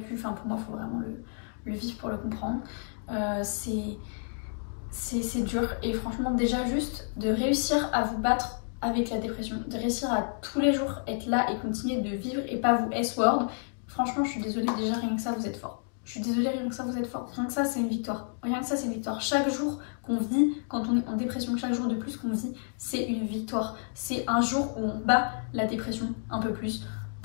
enfin pour moi il faut vraiment le vivre pour le comprendre. C'est dur et franchement déjà juste de réussir à vous battre avec la dépression, de réussir à tous les jours être là et continuer de vivre et pas vous S-word, franchement je suis désolée, déjà rien que ça vous êtes fort. Je suis désolée, rien que ça vous êtes fort, rien que ça c'est une victoire, rien que ça c'est une victoire. Chaque jour qu'on vit, quand on est en dépression, chaque jour de plus qu'on vit, c'est une victoire. C'est un jour où on bat la dépression un peu plus,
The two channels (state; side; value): silent; right; 58 dB below the other